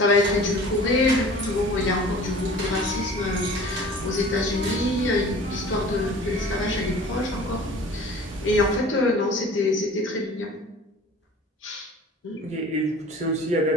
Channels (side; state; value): both; normal; correlation 0.44